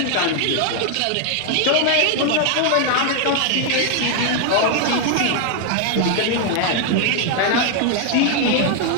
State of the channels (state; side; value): different; both; correlation 0.00